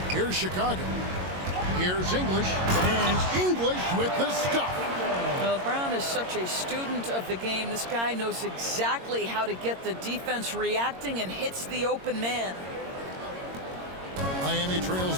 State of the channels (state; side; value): late; left; 22 ms